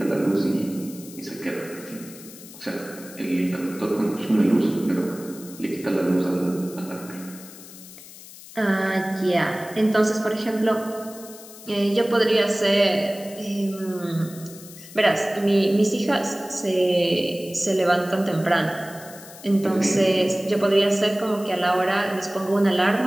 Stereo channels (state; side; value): noise; left; hiss, 17 dB below the sound